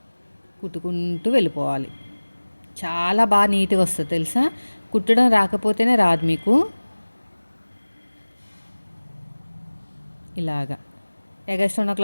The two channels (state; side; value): inverted; both; correlation -1.00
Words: కుట్టుకుంటూ వెళ్ళిపోవాలి. చాలా బాగా నీట్‌గా వస్తుంది తెలుసా? కుట్టడం రాకపోతేనే రాదు మీకు. ఇలాగా ఎగస్ట్రా ఉన్న